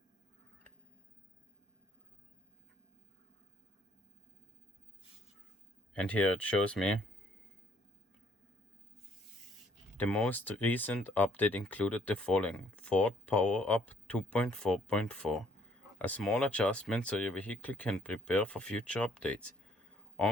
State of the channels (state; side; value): normal; both; correlation 0.64